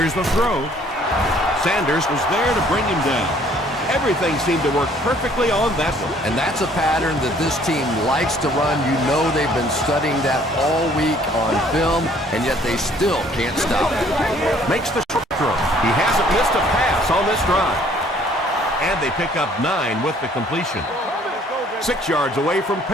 the throw. Sanders was there to bring him down. Everything seemed to work perfectly on that one. And that's a pattern that this team likes to run. You know they've been studying that all week on film, and yet they still can't stop it. Makes the short throw. He hasn't missed a pass on this drive. And they pick up 9 with the completion. 6 yards away from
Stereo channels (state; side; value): normal; both; correlation 0.59